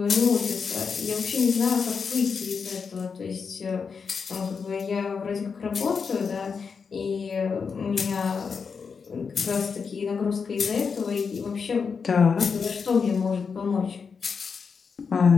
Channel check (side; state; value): right; quieter; 5.7 dB